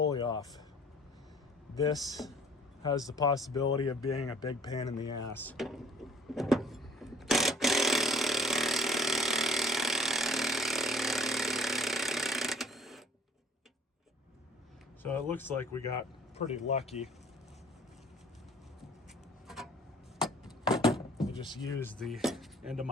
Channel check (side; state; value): both; normal; correlation 0.54